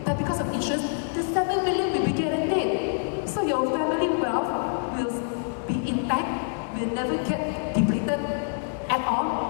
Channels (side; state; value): right; silent; 61 dB below the other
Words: But because of insurance, the 7 million will be guaranteed. So your family wealth will be intact, will never get depleted at